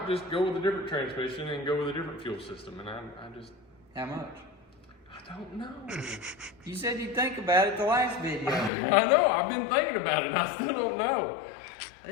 just go with a different transmission and go with a different fuel system. And I just, How much? I don't know. You said you'd think about it the last video. I know, I've been thinking about it and I still don't know.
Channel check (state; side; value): drops out; right; at 8.7 s